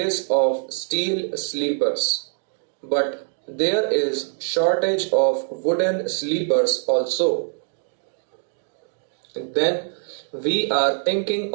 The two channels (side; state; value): left; silent; digital silence